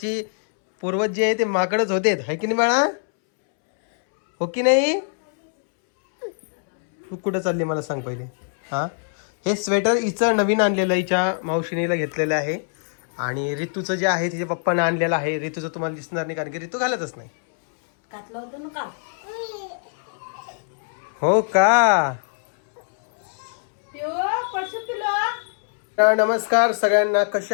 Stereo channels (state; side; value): silent; right; 64 dB below the other